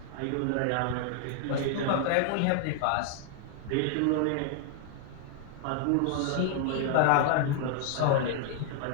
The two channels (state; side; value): different; both; correlation 0.00